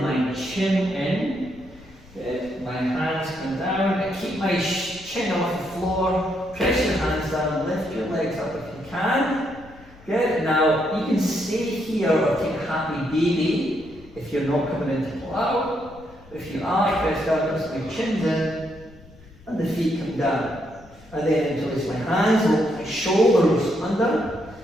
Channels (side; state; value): left; noise; rumble, 23 dB below the sound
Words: my chin in. Good. My hands come down. I keep my chin off the floor. Press your hands down. Lift your legs up if you can. Good. Now you can stay here or take a happy baby if you're not coming into plow. If you are, press down. Notice my chin's in, and the feet come down. And then interlace my hands, look my shoulders under,